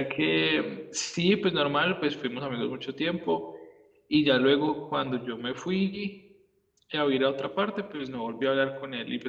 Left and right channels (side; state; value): both; identical; correlation 1.00